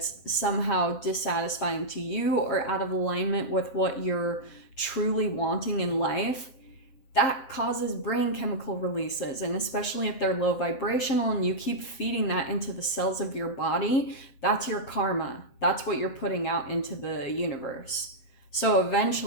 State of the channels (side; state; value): right; late; 7.6 ms